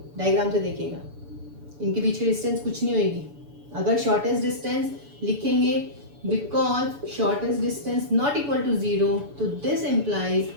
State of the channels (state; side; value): late; left; 7.0 ms